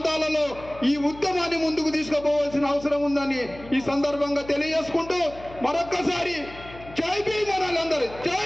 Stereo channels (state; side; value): noise; left; hum, 18 dB below the sound